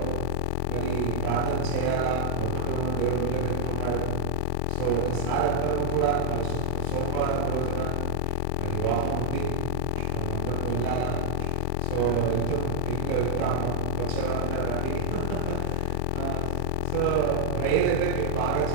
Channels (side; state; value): both; different; correlation -0.01